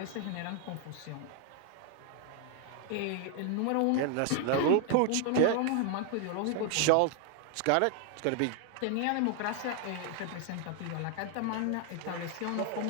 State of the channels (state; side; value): different; both; correlation 0.00